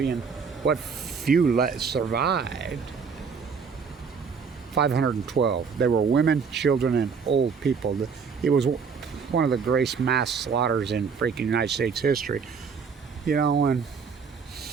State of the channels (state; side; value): quieter; left; 5.8 dB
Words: what few survived. 512. They were women, children, and old people. It was one of the greatest mass slaughters in freaking United States history. You know, and